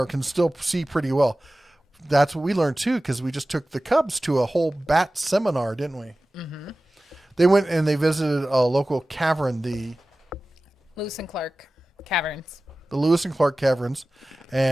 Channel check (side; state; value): both; normal; correlation 0.96